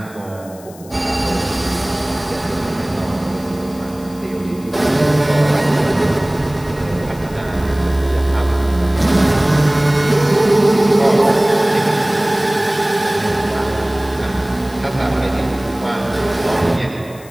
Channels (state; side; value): noise; left; hiss, 22 dB below the sound